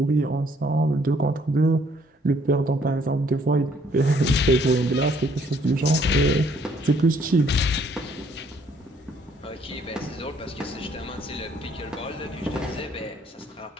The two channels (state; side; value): normal; both; correlation 0.64